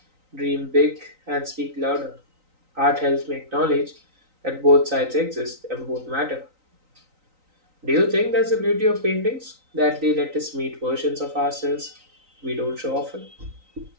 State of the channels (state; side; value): late; left; 3.9 ms